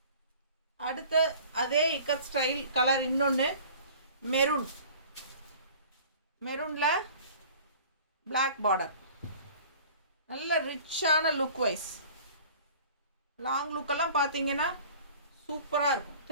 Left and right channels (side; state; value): both; inverted; correlation -0.46